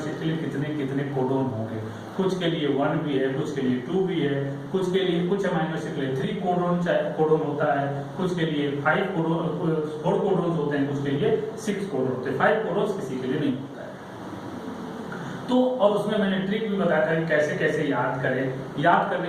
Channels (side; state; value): both; identical; correlation 1.00